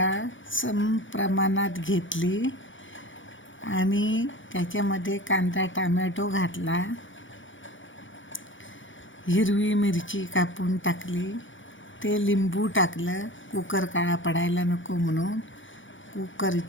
सम प्रमाणात घेतली आणि त्याच्यामध्ये कांदा टमॅटो घातला. हिरवी मिरची कापून टाकली. ते लिंबू टाकलं, कुकर काळा पडायला नको म्हणून.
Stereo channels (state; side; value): late; right; 0.56 ms